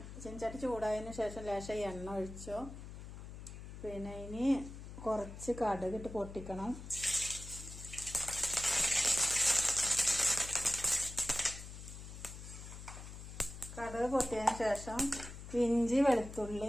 ചീനച്ചട്ടി ചൂടായതിനു ശേഷം ലേശം എണ്ണ ഒഴിച്ചു. പിന്നെ ഇനി കുറച്ച് കടുകിട്ട് പൊട്ടിക്കണം. കടുക് പൊട്ടിയതിന് ശേഷം ഇഞ്ചി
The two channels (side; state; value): left; noise; hum, 12 dB below the sound